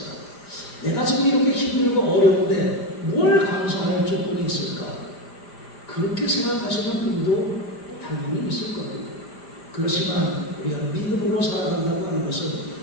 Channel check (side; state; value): right; late; 5.0 ms